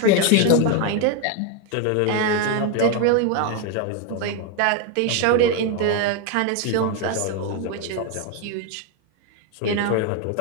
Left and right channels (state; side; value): different; both; correlation 0.01